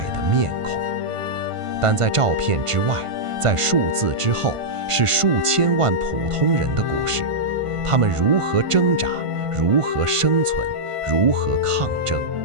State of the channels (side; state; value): left; late; 1.5 ms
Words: 的面孔。但在照片之外，在数字之后，是数千万普通人的故事，他们如何挣扎，如何生存，如何抗争，